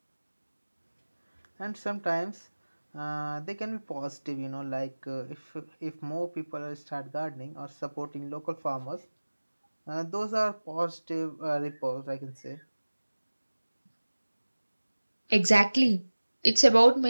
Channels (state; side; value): inverted; both; correlation -1.00